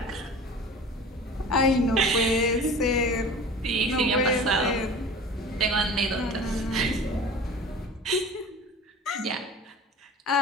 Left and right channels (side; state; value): both; normal; correlation 0.39